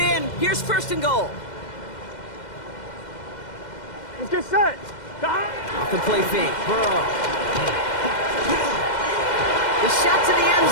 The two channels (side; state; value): right; late; 2.1 ms